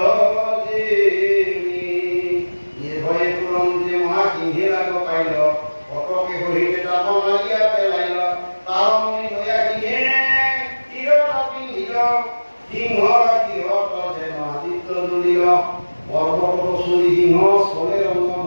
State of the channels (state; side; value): inverted; both; correlation -1.00